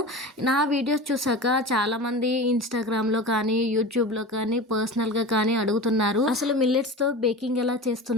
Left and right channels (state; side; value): normal; both; correlation 0.31